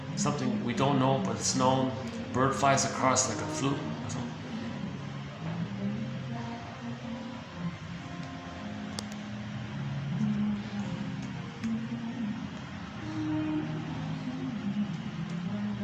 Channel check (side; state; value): both; identical; correlation 1.00